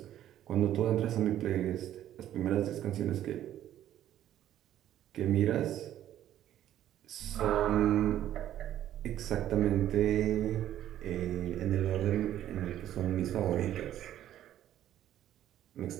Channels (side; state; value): left; quieter; 12.0 dB